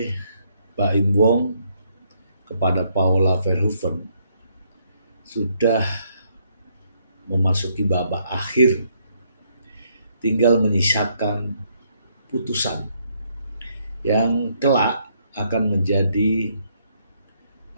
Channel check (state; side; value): inverted; both; correlation -0.71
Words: Baim Wong kepada Paula Verhoeven sudah memasuki babak akhir. Tinggal menyisakan putusan yang kelak akan menjadi